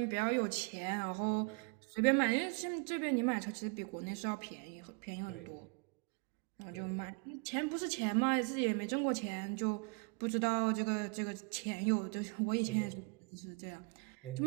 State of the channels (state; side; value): quieter; left; 33.1 dB